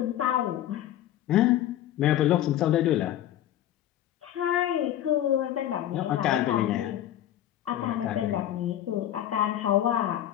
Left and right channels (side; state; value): right; quieter; 12.1 dB